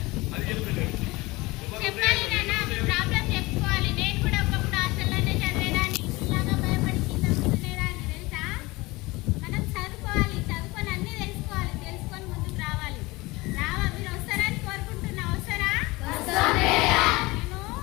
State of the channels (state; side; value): quieter; right; 22.1 dB